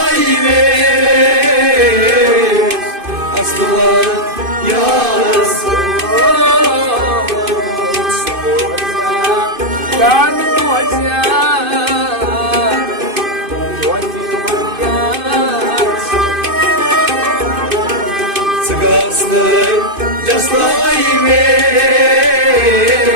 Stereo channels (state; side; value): late; left; 2.5 ms